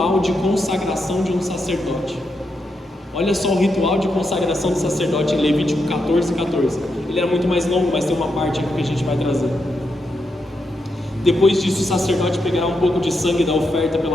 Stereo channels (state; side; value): normal; both; correlation 0.83